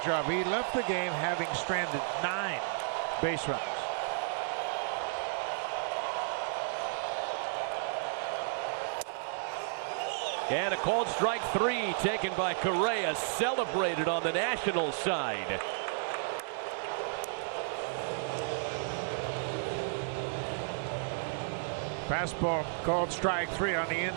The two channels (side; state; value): left; silent; digital silence